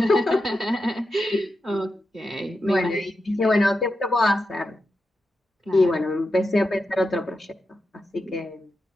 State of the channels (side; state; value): both; normal; correlation 0.88